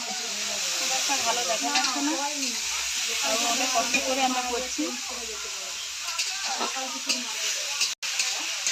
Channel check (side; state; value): both; identical; correlation 1.00